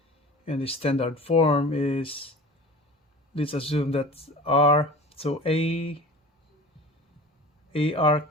And the standard form is, let's assume that r, so ar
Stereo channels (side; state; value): both; normal; correlation 0.38